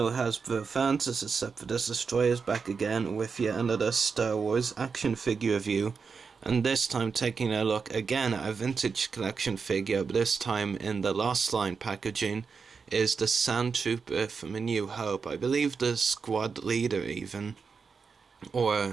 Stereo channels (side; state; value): left; quieter; 5.4 dB